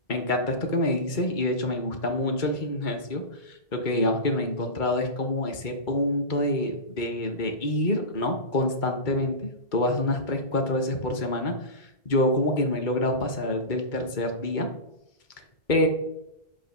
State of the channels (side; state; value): right; late; 2.2 ms